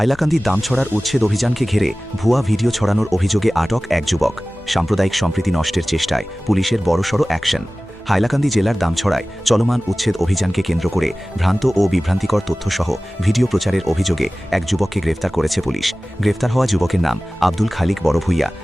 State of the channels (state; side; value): normal; both; correlation 0.97